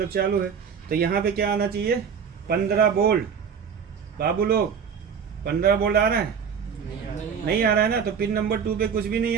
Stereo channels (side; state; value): left; quieter; 6.8 dB